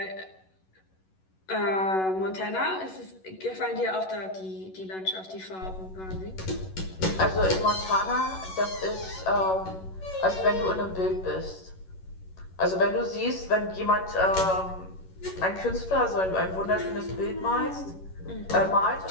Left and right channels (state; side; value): late; right; 11 ms